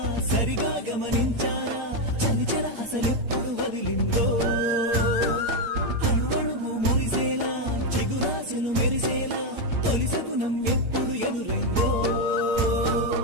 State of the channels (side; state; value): left; late; 8.7 ms